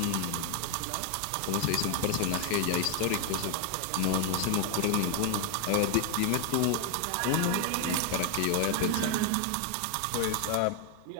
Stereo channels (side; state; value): both; different; correlation 0.00